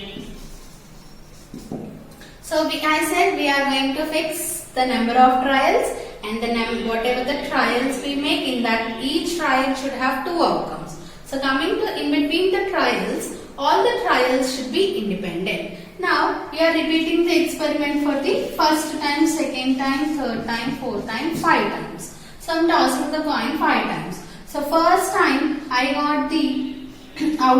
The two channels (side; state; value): both; identical; correlation 1.00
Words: So I said we are going to fix the number of trials, and the whatever the trials we make, in that each trial should have two outcomes. So coming to in between the trials, all the trials should be independent. Now we are repeating the experiment for the first time, second time, third time, fourth time, 5 times. So I am tossing the coin 5 times. So first time I got the